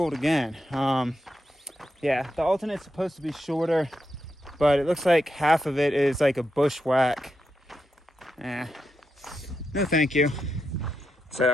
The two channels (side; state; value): both; normal; correlation 0.85